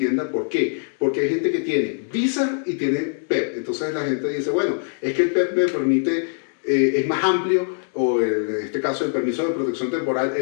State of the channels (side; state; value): right; silent; digital silence